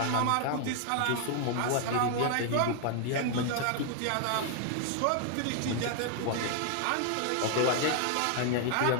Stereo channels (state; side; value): different; both; correlation 0.00